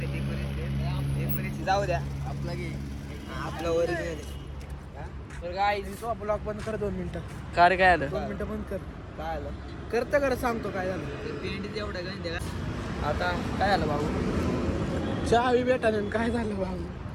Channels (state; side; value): identical; both; correlation 1.00